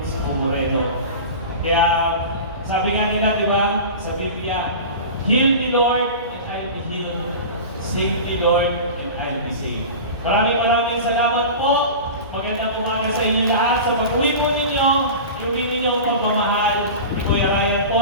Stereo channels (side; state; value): both; inverted; correlation -0.32